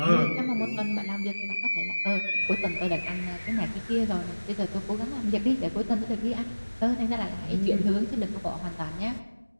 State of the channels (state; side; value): inverted; both; correlation -1.00